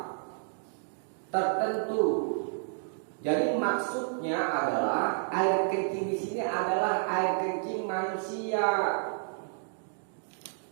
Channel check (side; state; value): left; silent; digital silence